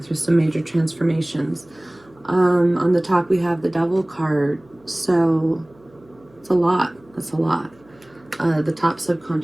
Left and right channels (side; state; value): right; noise; hum, 29 dB below the sound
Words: through some major transformations. On the top, we have the Devil card. So it's a lot. That's a lot. The top